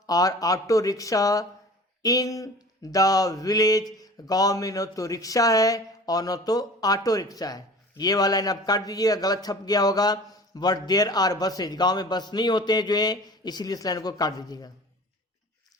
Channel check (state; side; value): normal; both; correlation 0.42